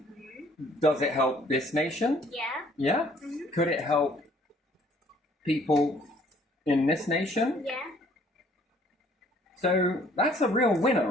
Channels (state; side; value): normal; both; correlation 0.59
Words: Does it help this nation? Yeah. Yeah? Could it help people in this nation? Yeah. So that's a real winner,